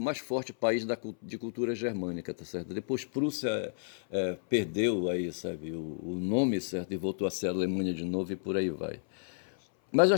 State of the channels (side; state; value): right; silent; 57 dB below the other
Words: mais forte país de cultura germânica, tá certo? Depois Prússia perdeu aí, sabe, o nome, certo, e voltou a ser Alemanha de novo e por aí vai. Mas eu